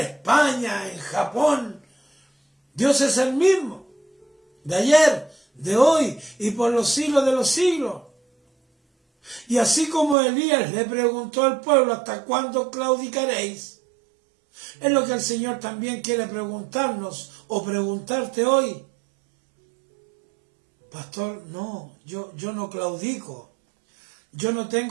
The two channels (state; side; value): drops out; left; at 10.2 s